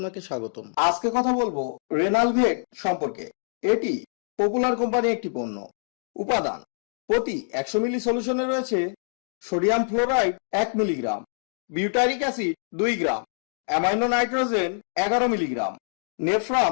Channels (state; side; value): silent; right; digital silence